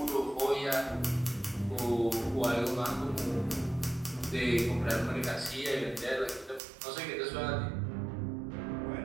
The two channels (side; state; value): left; drops out; at 6.6 s